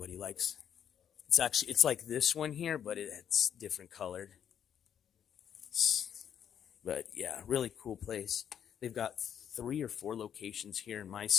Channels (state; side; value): quieter; right; 8.9 dB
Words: likes. It's like this one here, but it's different colored. But yeah, really cool place. They've got 3 or 4 locations here in my